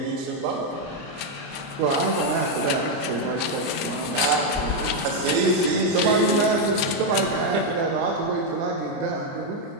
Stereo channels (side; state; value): left; late; 29 ms